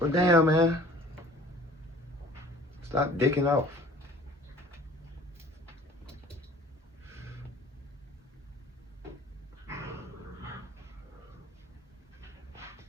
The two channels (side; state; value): both; normal; correlation 0.49